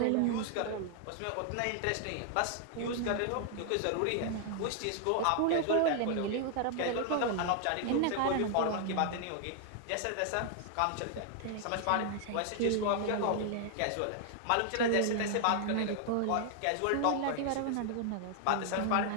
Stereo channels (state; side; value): different; both; correlation 0.00